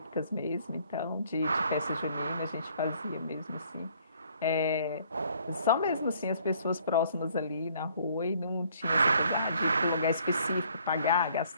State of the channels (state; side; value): inverted; both; correlation -0.61